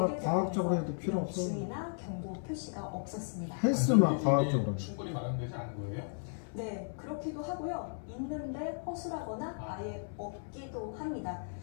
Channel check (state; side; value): silent; right; 54 dB below the other